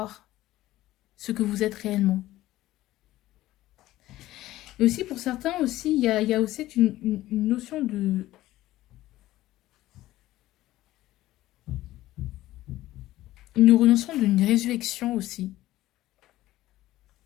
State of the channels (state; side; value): quieter; right; 15.7 dB